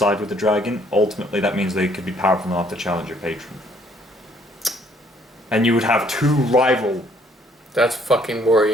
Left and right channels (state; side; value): normal; both; correlation 0.64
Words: with the dragon, ultimately that means they could be powerful enough to challenge your patron. And you would have two rival... That's fucking